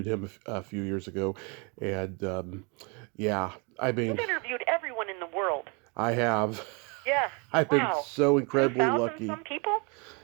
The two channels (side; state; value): left; quieter; 32.0 dB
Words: him a few years ago, and I mean, you've interviewed everyone in the world. I have. Yeah. I've been so incredibly 2,000 lucky. Some people.